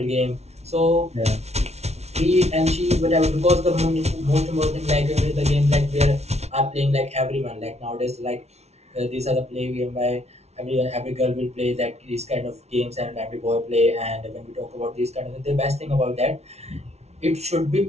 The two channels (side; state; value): left; late; 0.31 ms